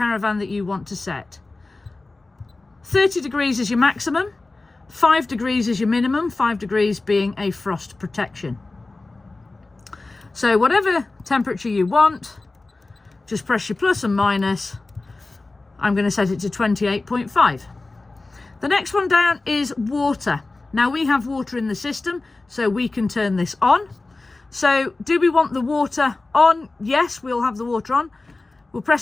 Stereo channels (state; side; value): quieter; right; 3.3 dB